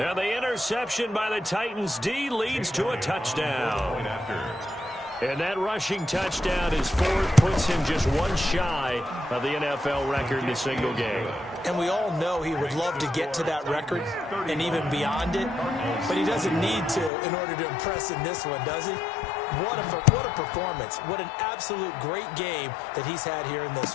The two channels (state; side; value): drops out; right; at 17.1 s